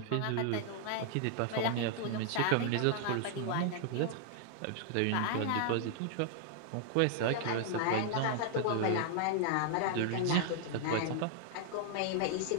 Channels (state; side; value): different; both; correlation 0.00